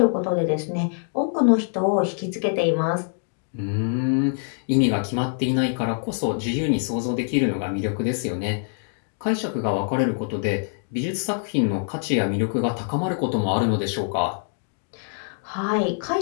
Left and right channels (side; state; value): right; silent; digital silence